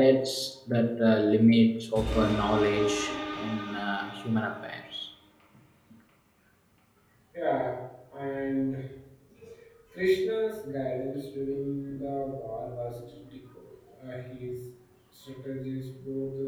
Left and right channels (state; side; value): identical; both; correlation 1.00